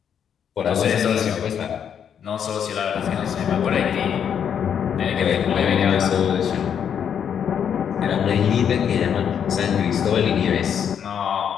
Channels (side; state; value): right; quieter; 8.2 dB